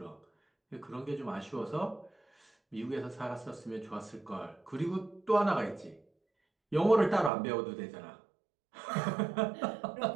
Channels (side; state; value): left; drops out; at 7.3 s